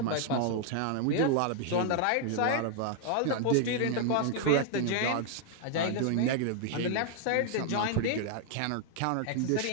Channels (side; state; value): both; different; correlation 0.00